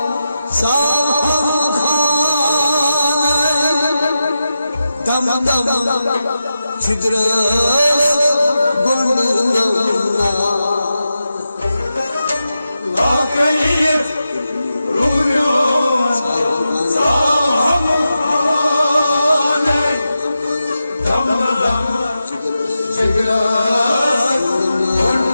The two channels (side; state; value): both; inverted; correlation -0.90